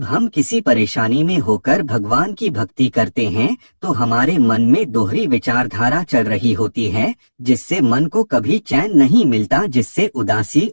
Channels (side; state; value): both; inverted; correlation -1.00